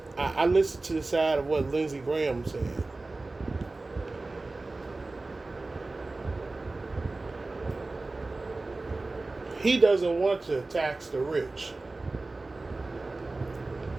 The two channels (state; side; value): quieter; left; 3.3 dB